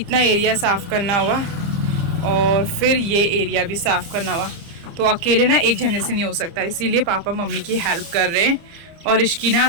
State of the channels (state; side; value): late; left; 30 ms